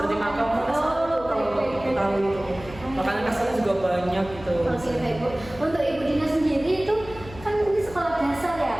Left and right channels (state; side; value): noise; left; hum, 16 dB below the sound